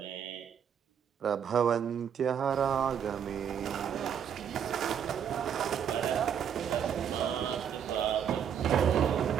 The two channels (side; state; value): left; quieter; 8.4 dB